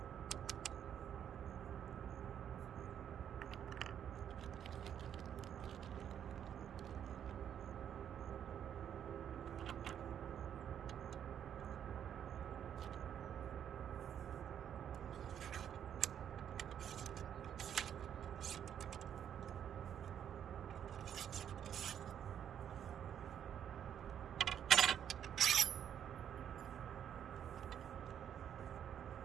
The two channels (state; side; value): quieter; left; 9.1 dB